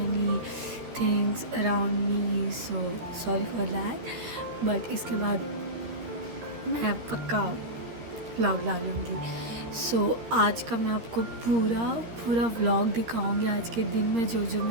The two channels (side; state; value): left; late; 13 ms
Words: things around me, so sorry for that. But इसके बाद मैं पक्का व्लॉग डालूँगी। सो आज का मैं आपको पूरा व्लॉग दिखाऊंगी। आज के दिन में जो जो